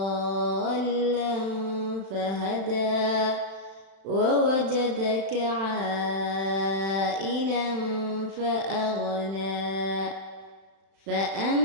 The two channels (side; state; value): left; late; 36 ms